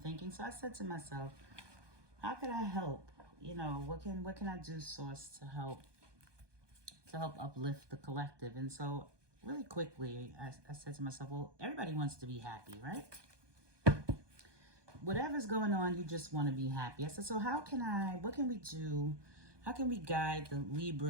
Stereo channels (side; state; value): left; late; 1.2 ms